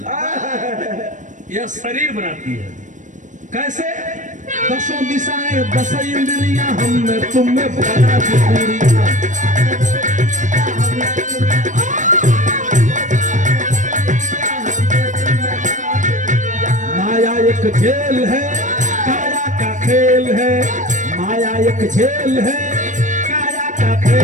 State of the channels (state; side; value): late; left; 0.37 ms